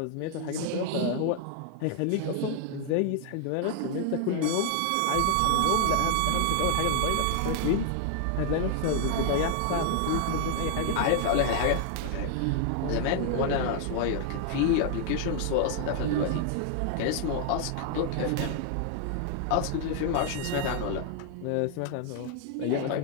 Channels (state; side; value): different; both; correlation 0.00